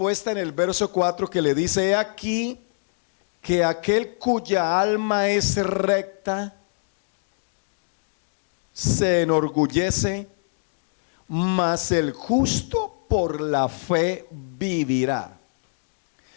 en el verso 4 que le dice: he aquí que aquel cuya alma es recta se enorgullece, mas el justo por la fe vivirá.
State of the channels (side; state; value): right; silent; digital silence